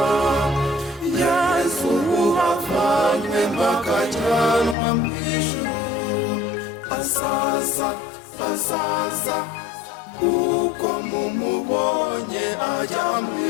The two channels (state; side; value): drops out; right; at 4.8 s